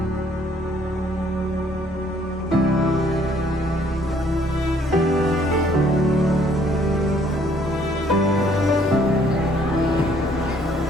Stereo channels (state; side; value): normal; both; correlation 0.63